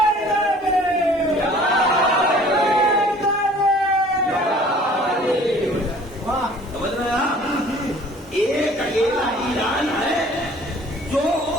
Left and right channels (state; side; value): normal; both; correlation 0.51